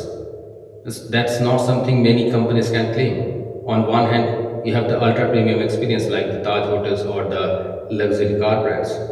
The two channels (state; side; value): identical; both; correlation 1.00